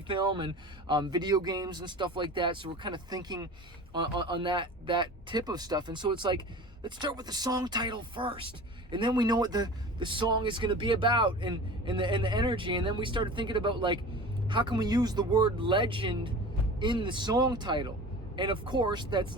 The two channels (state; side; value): normal; both; correlation 0.37